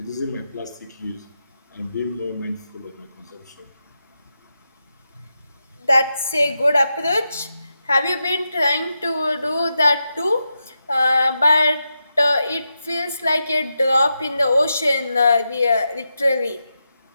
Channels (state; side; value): inverted; both; correlation -0.88